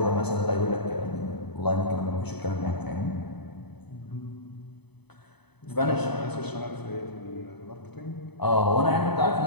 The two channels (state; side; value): late; right; 0.98 ms